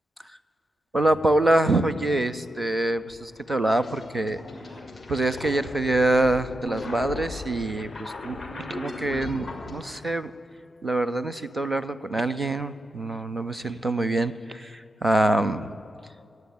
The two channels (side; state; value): both; normal; correlation 0.87